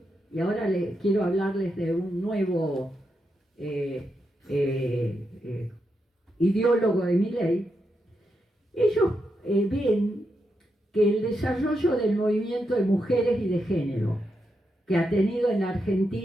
y ahora quiero hablarles de un nuevo ideólogo de Milei. Ellos ven que el desarrollo del movimiento de mujeres y de género que ha tenido en la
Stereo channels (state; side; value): normal; both; correlation 0.84